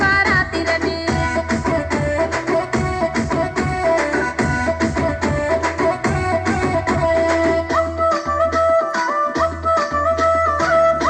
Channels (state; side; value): identical; both; correlation 1.00